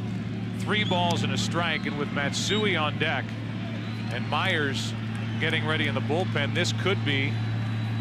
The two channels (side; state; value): both; identical; correlation 1.00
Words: 3 balls and a strike, and with Matsui on deck and Myers getting ready in the bullpen, this could be